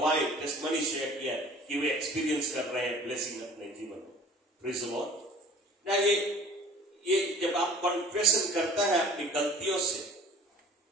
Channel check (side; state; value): both; normal; correlation 0.47